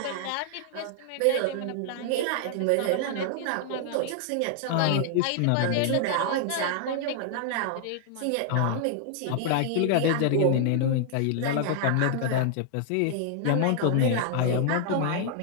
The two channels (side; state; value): both; different; correlation -0.01